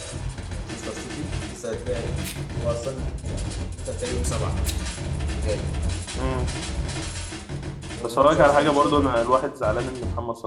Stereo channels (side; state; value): both; identical; correlation 1.00